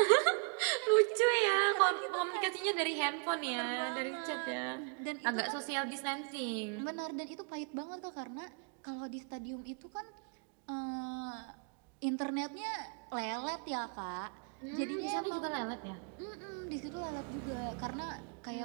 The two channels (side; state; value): left; quieter; 39.6 dB